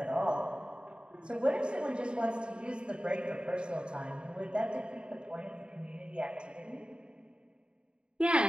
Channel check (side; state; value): left; late; 0.052 ms